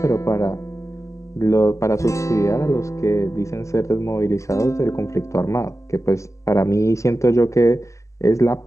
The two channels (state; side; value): late; right; 0.15 ms